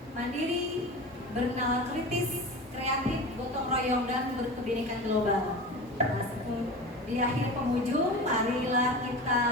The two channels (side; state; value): both; normal; correlation 0.31